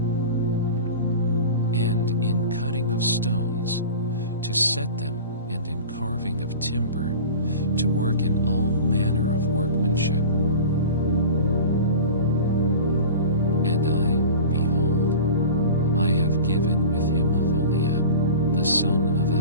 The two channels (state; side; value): inverted; both; correlation -0.36